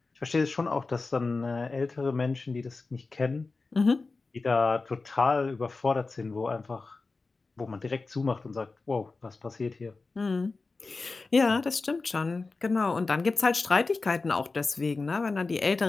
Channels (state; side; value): quieter; right; 3.9 dB